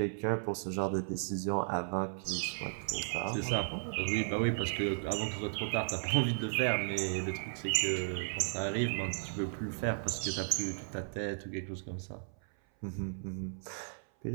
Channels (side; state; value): left; silent; 54 dB below the other